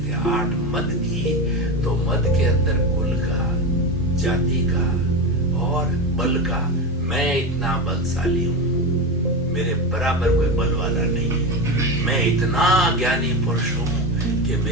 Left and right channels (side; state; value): both; normal; correlation 0.19